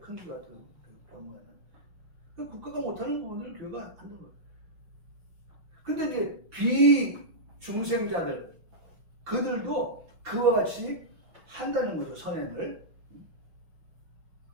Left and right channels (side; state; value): left; late; 5.9 ms